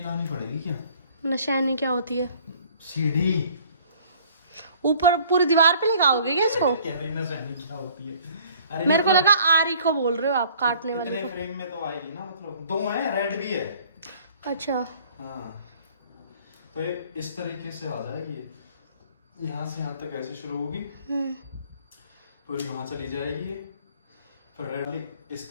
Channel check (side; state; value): both; inverted; correlation -0.55